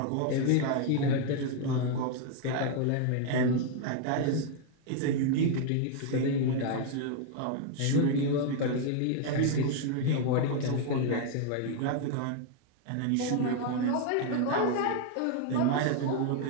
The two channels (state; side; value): different; both; correlation 0.00